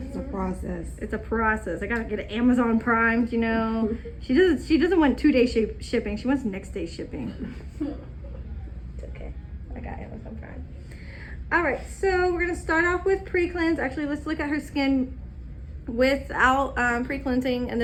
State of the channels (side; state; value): both; identical; correlation 1.00